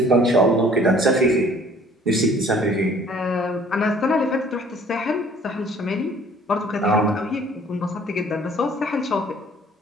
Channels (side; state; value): both; normal; correlation 0.55